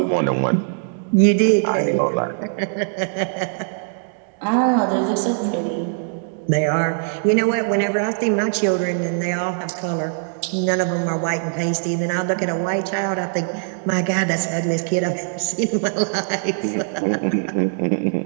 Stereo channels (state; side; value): silent; left; digital silence